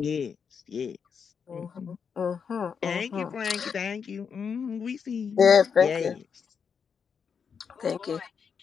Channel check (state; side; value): quieter; right; 6.5 dB